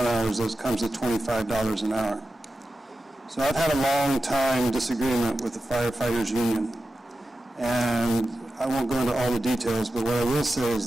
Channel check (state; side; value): normal; both; correlation 0.92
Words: that comes to $25 an hour. So I've had a long time disagreement with the firefighters union, and I won't go into all the details, but what I will say